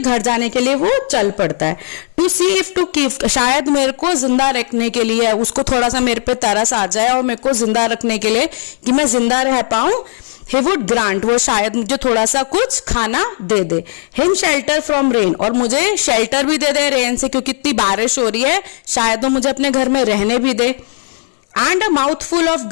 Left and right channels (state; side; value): silent; right; digital silence